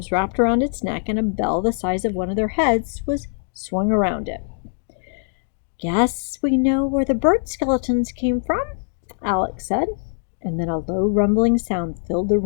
wrapped around its neck, and a bell the size of one of their heads was swung around it. "Guess we know where the bird skeletons came from," Alex said. And then a low rumbling sound filled the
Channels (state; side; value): silent; right; 57 dB below the other